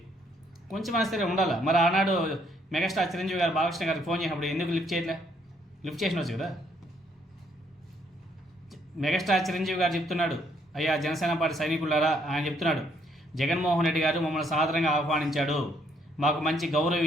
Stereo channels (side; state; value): both; normal; correlation 0.69